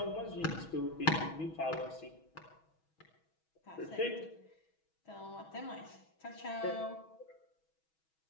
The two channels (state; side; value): late; right; 6.2 ms